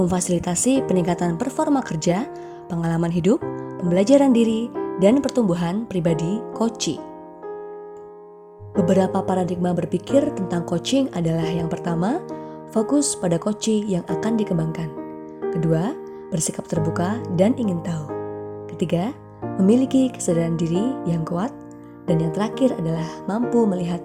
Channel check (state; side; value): identical; both; correlation 1.00